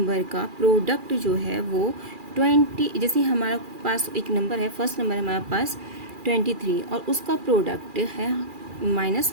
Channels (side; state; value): left; late; 2.4 ms